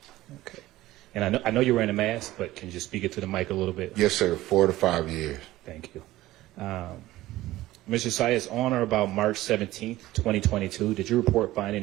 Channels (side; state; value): left; quieter; 16.4 dB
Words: Okay. And I know you're wearing a mask, but can you just speak it to the mic a little bit? Yes, sir. 4 to 5 years. Thank you. Mr. Sayas, on or about March 17th, 2022, did you report